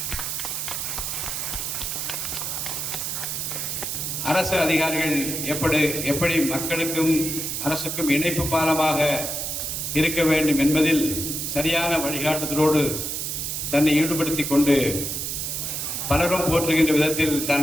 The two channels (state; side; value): noise; right; hiss, 3 dB below the sound